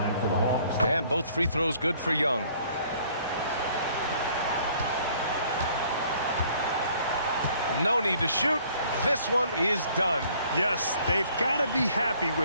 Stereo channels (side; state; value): both; inverted; correlation -0.59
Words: for the Hawks. And both free throws good for Young. No need to shoot. This one is done. Yes, they've got to be happy